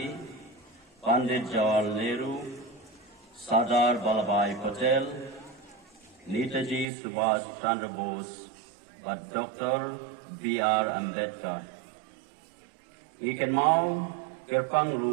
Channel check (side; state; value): left; drops out; at 6.9 s